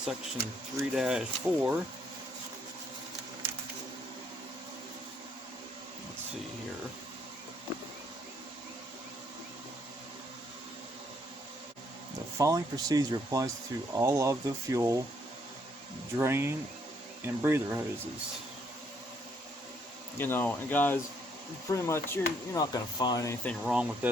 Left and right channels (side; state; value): both; normal; correlation 0.70